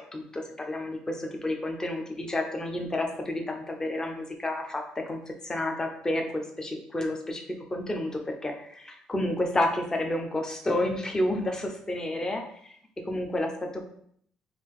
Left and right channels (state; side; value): normal; both; correlation 0.83